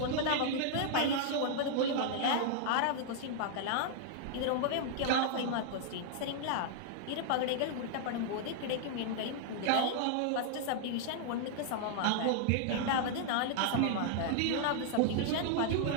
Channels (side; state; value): both; different; correlation -0.01